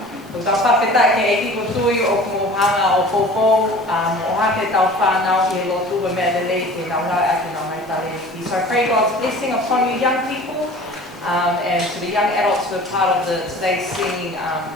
Ko tau whawhetai ke eki ko tui o kumuhanga o popo, o hake tau whānau i lotu wa mea lelei te naunga ake nau mai tale. So I pray God's blessing upon you young people. And to the young adults who are part of today's singing,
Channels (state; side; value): normal; both; correlation 0.43